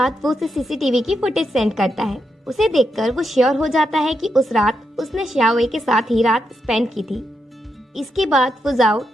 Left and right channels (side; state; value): both; normal; correlation 0.83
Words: वो उसे सीसीटीवी की फुटेज सेंड करता है। उसे देखकर वो श्योर हो जाता है कि उस रात उसने शाओए के साथ ही रात स्पेंड की थी। इसके बाद फुजाओ